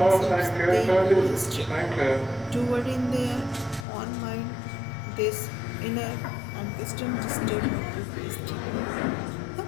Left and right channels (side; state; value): right; drops out; at 3.9 s